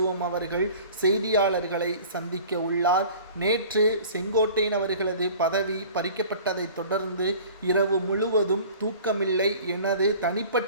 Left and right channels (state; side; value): inverted; both; correlation -0.45